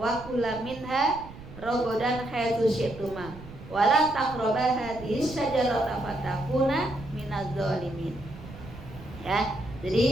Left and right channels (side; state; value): right; noise; rumble, 16 dB below the sound